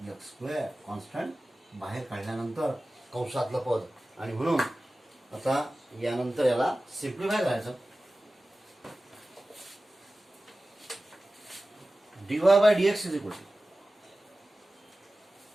x square constant बाहेर काढल्यानंतर कंसातलं पद आणि म्हणून आता यानंतर याला सिम्प्लिफाय करायचं. dy by dx is equal to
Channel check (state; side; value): normal; both; correlation 0.96